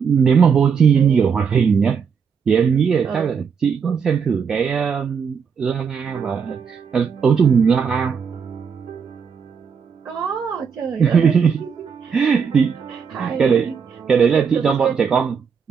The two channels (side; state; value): left; quieter; 6.4 dB